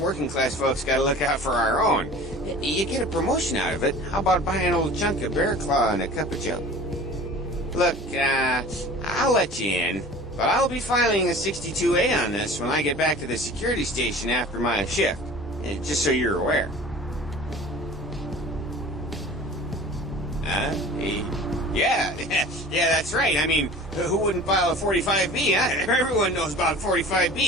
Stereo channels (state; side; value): normal; both; correlation 0.41